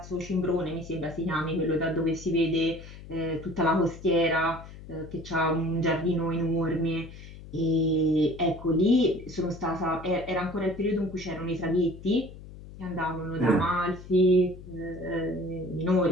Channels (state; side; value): noise; left; hum, 16 dB below the sound